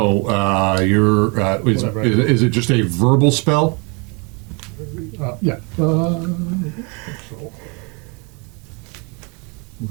you're Whatever I do. is it just a verbal spell? Yeah.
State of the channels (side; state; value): left; quieter; 31.8 dB